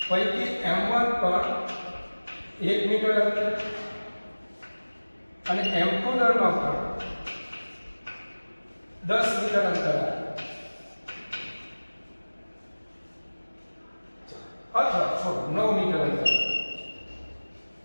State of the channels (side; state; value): both; inverted; correlation -1.00